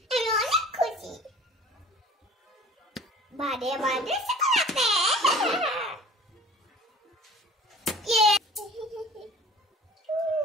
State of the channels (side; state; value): both; normal; correlation 0.46